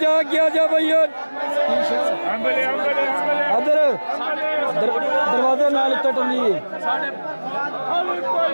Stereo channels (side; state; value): both; inverted; correlation -1.00